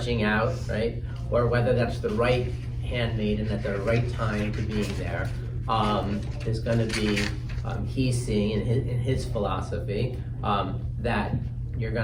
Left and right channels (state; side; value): identical; both; correlation 1.00